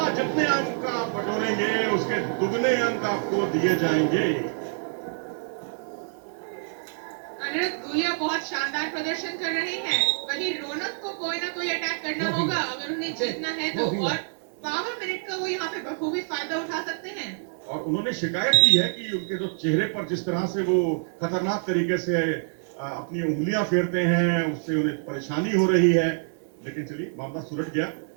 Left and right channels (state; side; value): silent; left; digital silence